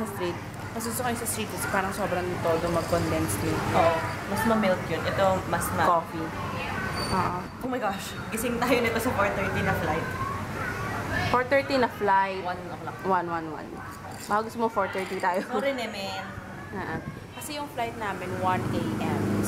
sa street. Mas gusto ko yung sa street kasi parang sobrang todo mag-condense milk. Oo. Mas ma-milk yun. Ito, mas Coffee. Oo. Oh my gosh. Gising tayo nito sa 4:30 na flight. 4:30 na flight. 1 o'clock. 1:11. Baka gusto mo 4:30 tayo. Sorry, Nemen. Kasi yung flight namin 1 a.m.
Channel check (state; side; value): identical; both; correlation 1.00